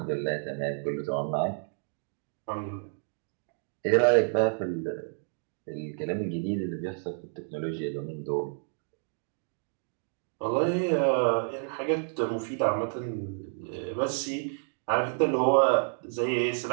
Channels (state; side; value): silent; left; 58 dB below the other